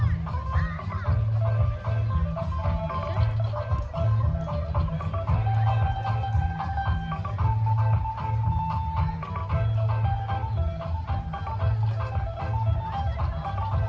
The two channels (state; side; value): identical; both; correlation 1.00